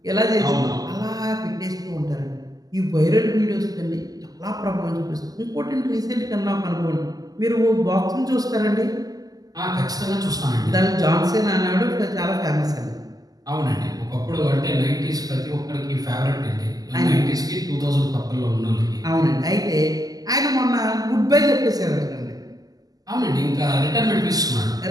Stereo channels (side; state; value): left; late; 0.18 ms